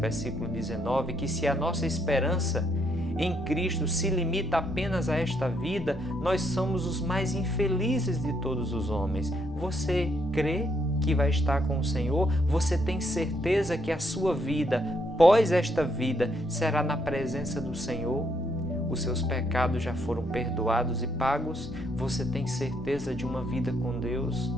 19, que se a nossa esperança em Cristo se limita apenas a esta vida, nós somos os mais infelizes de todos os homens. Você crê que vai estar com o Senhor? Você tem certeza que a sua vida, pós esta vida, será na presença do Senhor? Os seus pecados já foram perdoados e pagos? Você tem certeza de uma vida com Deus?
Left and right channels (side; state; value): both; normal; correlation 0.74